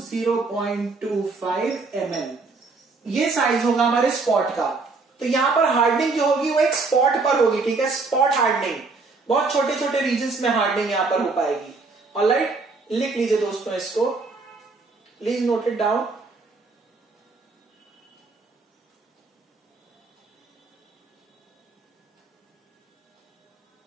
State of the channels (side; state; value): left; quieter; 4.0 dB